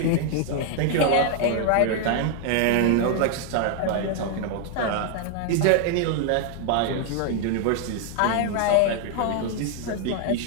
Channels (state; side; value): different; both; correlation 0.00